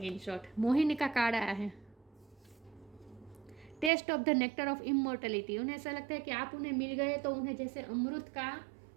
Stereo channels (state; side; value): drops out; left; at 3.9 s